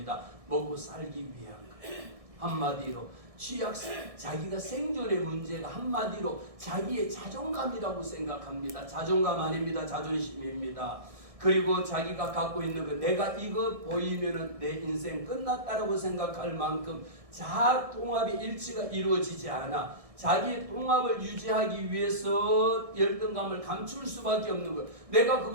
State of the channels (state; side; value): late; left; 1.6 ms